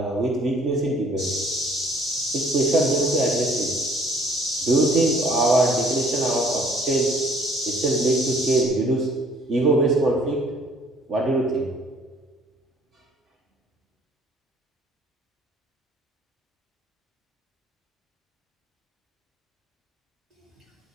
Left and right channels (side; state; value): both; normal; correlation 0.58